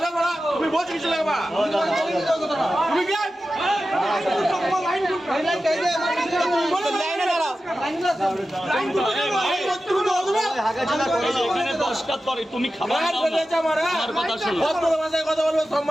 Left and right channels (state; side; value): normal; both; correlation 0.93